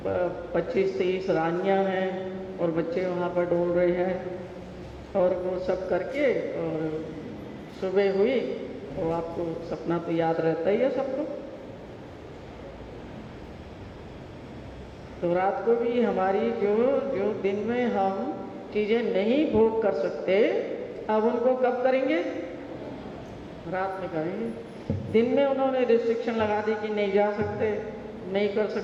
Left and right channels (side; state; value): both; identical; correlation 1.00